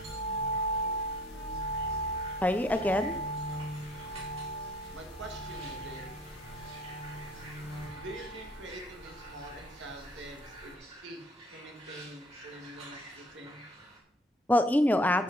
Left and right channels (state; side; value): normal; both; correlation 0.55